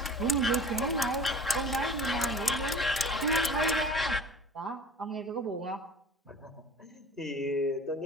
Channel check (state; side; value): normal; both; correlation 0.42